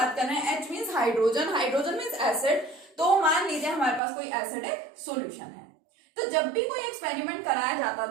कर रहे हैं, H means hydrogen, hydrogen means acid, तो मान लीजिए हमारे पास कोई एसिडिक सॉल्यूशन है। तो जब भी कोई एक्सपेरिमेंट कराया जाता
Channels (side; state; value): left; drops out; at 4.0 s